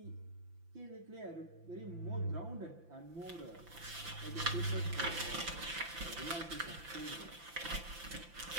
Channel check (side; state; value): left; late; 5.9 ms